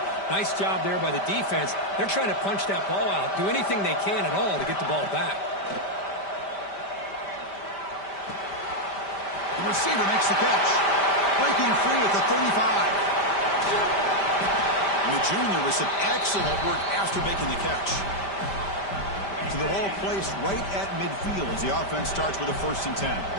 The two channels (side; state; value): right; late; 5.1 ms